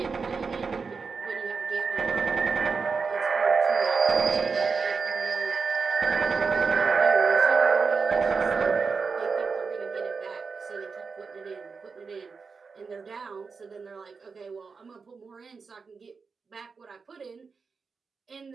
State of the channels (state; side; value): quieter; left; 5.0 dB